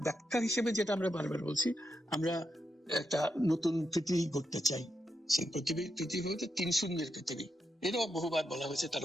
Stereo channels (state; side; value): normal; both; correlation 0.84